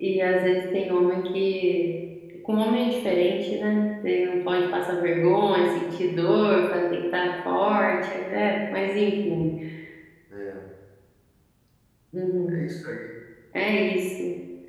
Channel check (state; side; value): identical; both; correlation 1.00